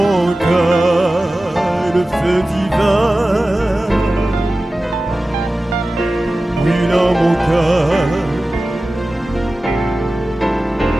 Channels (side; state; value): both; normal; correlation 0.96